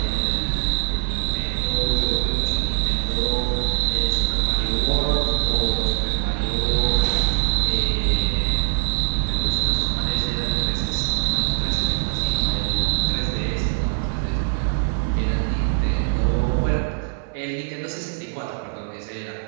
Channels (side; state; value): left; silent; 56 dB below the other